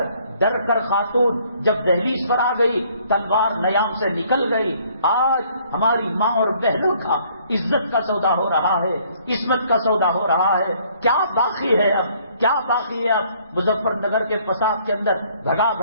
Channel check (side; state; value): both; inverted; correlation -0.62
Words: ڈر کر خاتون جب دہلیز پر آ گئی، تلوار نیام سے نکل گئی۔ آج ہماری ماں اور بہنوں کا عزت کا سودا ہو رہا ہے، عصمت کا سودا ہو رہا ہے، کیا باقی ہے اب، کیا باقی ہے اب؟ مظفر نگر کے فساد کے اندر بھگا